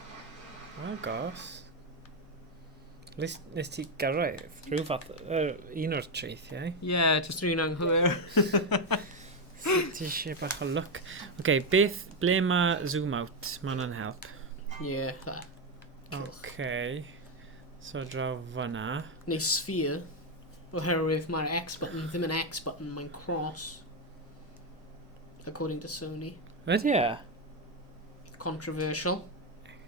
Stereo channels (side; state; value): both; normal; correlation 0.07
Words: Agos. Nes ti gyrraedd rhyw fath un o'r treithiau. Yeah, just rhywun anghywir. Ti eisiau bach o look. Okay, ble mae zoom out? Mae hwnna'n help. Yeah, that. Okay. So draw fyna. Neu sphere. Oherwydd mae'r X button ddim yn X button, mae'n cross. According to Sony. Ydy e? Controversial.